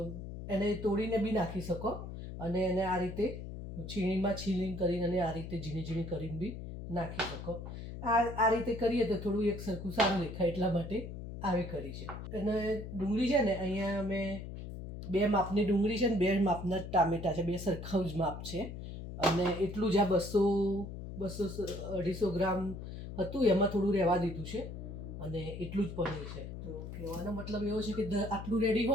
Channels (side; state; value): left; noise; hum, 9 dB below the sound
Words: એને તોડીને બી નાખી શકો અને એને આ રીતે છીણીમાં છીણીને કરીને અને આ રીતે ઝીણી ઝીણી કરીને બી નાખી શકો. આ રીતે કરીએ તો થોડું એક સરખું સારું દેખાય એટલા માટે આવી કરી છે. અને ડુંગળી છે ને અહીંયા અમે 2 માપની ડુંગળી છે ને 2 માપના ટામેટાં છે, 2 સરખા જ માપ છે. અને એટલું જ આ 200-250 ગ્રામ હતું એમાં થોડું રહેવા દીધું છે અને એટલું જ પનીર છે. તો કહેવાનો મતલબ એવો છે કે આટલું રેડી